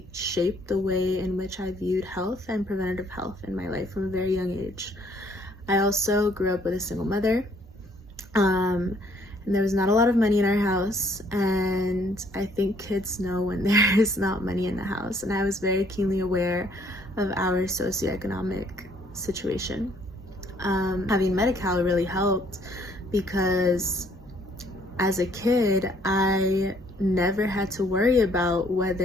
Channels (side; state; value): both; normal; correlation 0.64